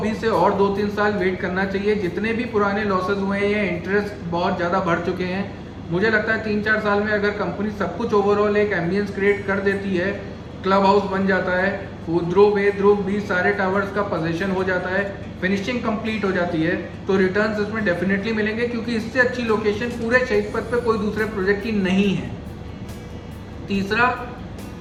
से और 2-3 साल वेट करना चाहिए। जितने भी पुराने लॉसेज हुए हैं, ये इंटरेस्ट बहुत ज़्यादा बढ़ चुके हैं। मुझे लगता है 3-4 साल में अगर कंपनी सब कुछ ओवरऑल एक एम्बियंस क्रिएट कर देती है, क्लब हाउस बन जाता है, ध्रुव ए, ध्रुव बी, सारे टावर्स का पोजीशन हो जाता है, फिनिशिंग कंप्लीट हो जाती है, तो रिटर्न्स इसमें डेफिनेटली मिलेंगे, क्योंकि इससे अच्छी लोकेशन पूरे शहीद पथ पे कोई दूसरे प्रोजेक्ट की नहीं है। तीसरा,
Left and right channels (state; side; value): identical; both; correlation 1.00